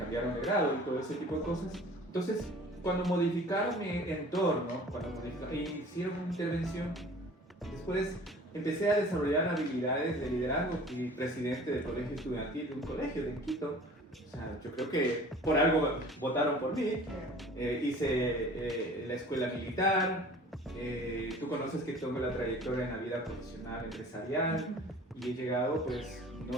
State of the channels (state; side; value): normal; both; correlation 0.46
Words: de grado y todo ese tipo de cosas. Entonces, cuando modificaron mi entorno, hicieron una intervención, después empecé a desarrollar habilidades de liderazgo. Fui presidente del colegio estudiantil de un colegio de Quito. O sea, yo creo que por algo votaron por mí. Hice la escuela militar. Tú conoces que tengo la trayectoria en la vida profesional, empresarial, y he llegado, pues,